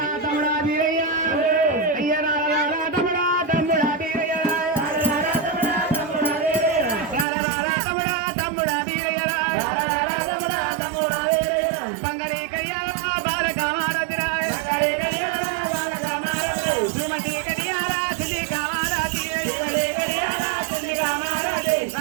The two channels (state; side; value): drops out; left; at 7.2 s